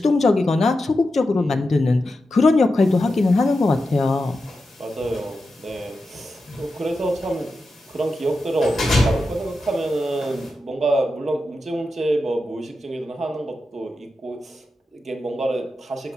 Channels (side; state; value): both; normal; correlation 0.90